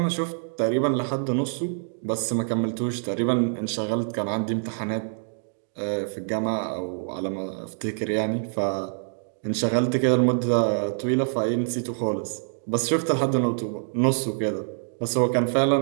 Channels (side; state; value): left; silent; digital silence